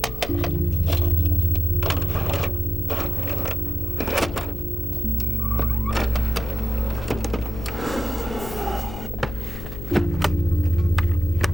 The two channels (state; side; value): noise; left; hum, 10 dB below the sound